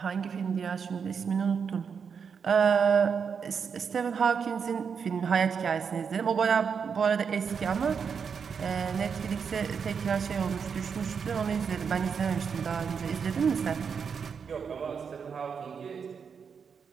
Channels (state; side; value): quieter; left; 6.4 dB